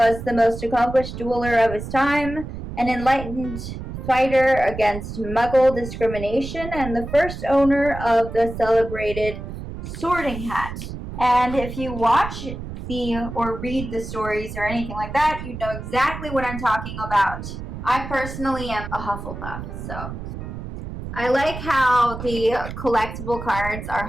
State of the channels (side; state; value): right; noise; rumble, 9 dB below the sound